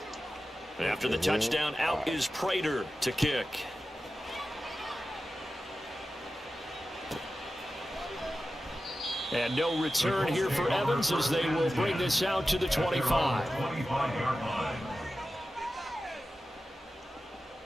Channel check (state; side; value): normal; both; correlation 0.93